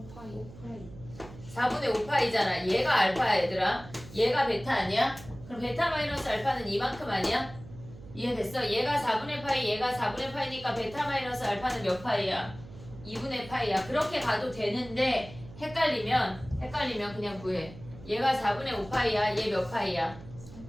4분의 5파이잖아. 얘가 알파야 얘들아. 얘가 베타 아니야? 그럼 베타 마이너스 알파는 이만큼 아니야? 이해됐어? 얘가 4분의 파이 얘가 4분의 파이니까 베타 마이너스 알파는 몇 파이야? 2분의 파이야. 그렇게 가도 되는데 헷갈리면 그냥 구해. 얘가 4분의 5파이야. 얘 몇 파이야?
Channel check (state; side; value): noise; right; hum, 17 dB below the sound